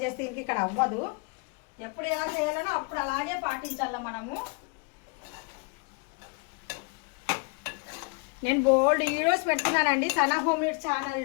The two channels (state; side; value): quieter; right; 32.5 dB